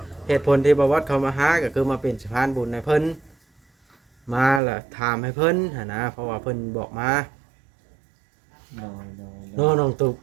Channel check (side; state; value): left; drops out; at 4.6 s